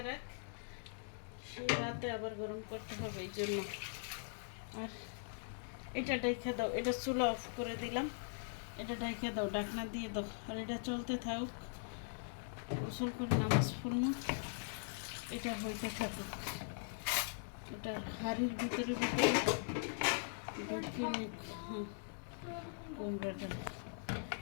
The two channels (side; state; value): right; silent; digital silence